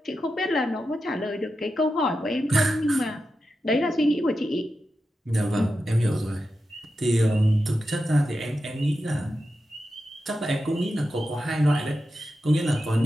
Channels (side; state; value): both; normal; correlation 0.90